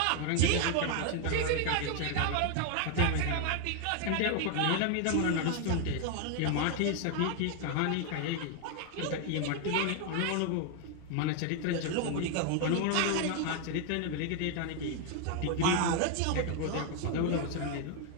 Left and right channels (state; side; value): different; both; correlation 0.01